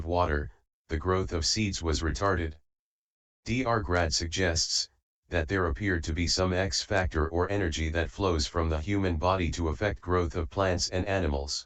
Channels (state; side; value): identical; both; correlation 1.00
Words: water, the growth of seeds was retarded. Dr. Grad suggests that there appeared to be some X factor or energy that flows from the human body to affect growth of plants and animals.